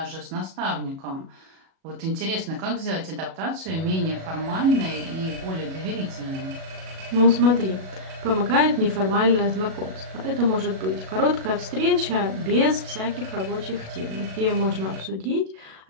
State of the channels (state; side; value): late; left; 37 ms